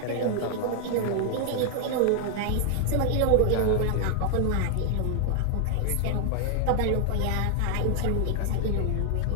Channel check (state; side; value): different; both; correlation 0.00